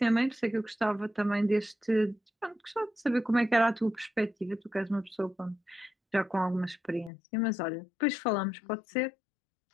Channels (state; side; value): drops out; right; at 7.1 s